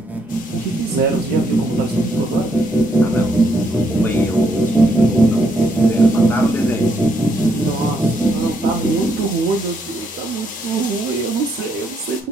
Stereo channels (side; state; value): both; normal; correlation 0.75